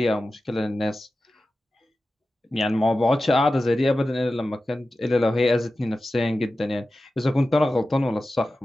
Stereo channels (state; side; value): normal; both; correlation 0.94